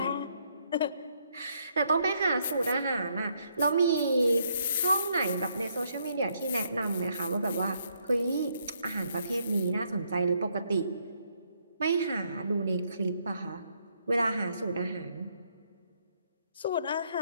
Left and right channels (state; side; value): inverted; both; correlation -0.73